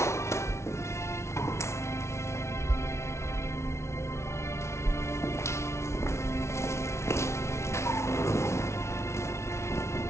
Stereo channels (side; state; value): right; late; 0.13 ms